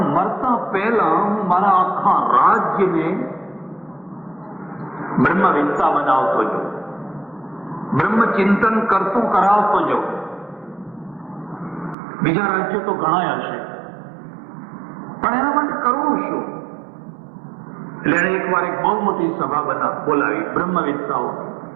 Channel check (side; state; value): left; drops out; at 12.0 s